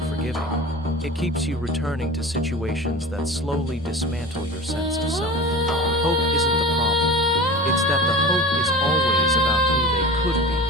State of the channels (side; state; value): both; normal; correlation 0.34